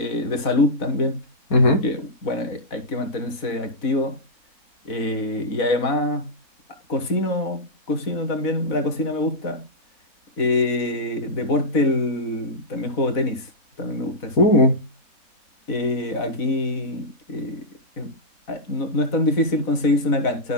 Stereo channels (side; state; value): right; late; 4.0 ms